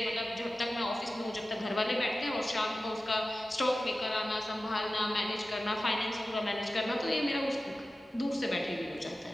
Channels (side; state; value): both; normal; correlation 0.95